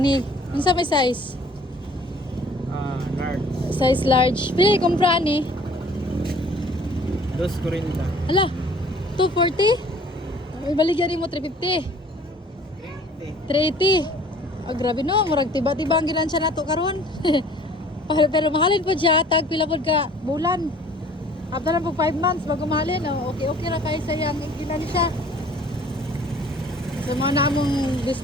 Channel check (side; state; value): both; normal; correlation 0.52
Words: ni. Ano sa may size? Large. Size large. Pili kumpra ni. 240. Ala, 240? May baligyan mo 350. 380. Oh, grabe no, murag tiba-tiba ang gilansya nato karon. Pero mahalin po siya, tag pila pod ka bulan. After na po 5 months bago mahalin, oh, okay ra kay sayang gilansya. So mga namong